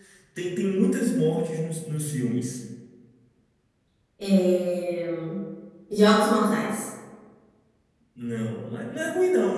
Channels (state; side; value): identical; both; correlation 1.00